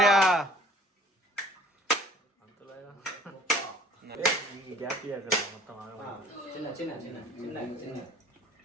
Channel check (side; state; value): both; normal; correlation 0.51